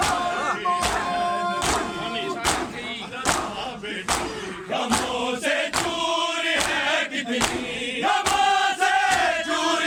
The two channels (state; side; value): identical; both; correlation 1.00